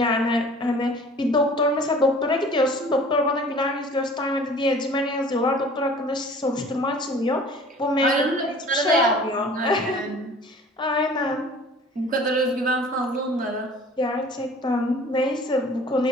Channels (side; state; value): both; normal; correlation 0.47